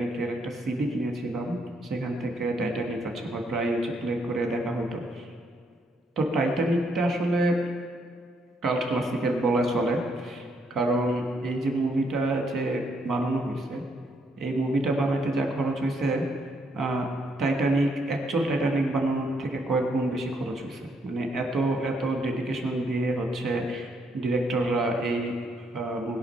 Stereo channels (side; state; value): both; normal; correlation 0.73